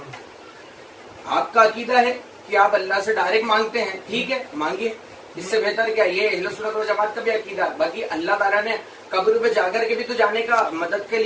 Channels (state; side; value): identical; both; correlation 1.00